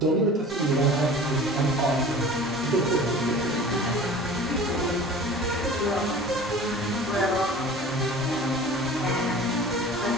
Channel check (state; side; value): normal; both; correlation 0.41